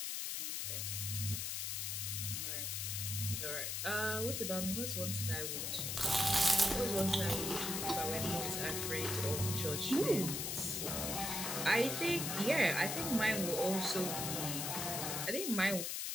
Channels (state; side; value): noise; left; hiss, 2 dB below the sound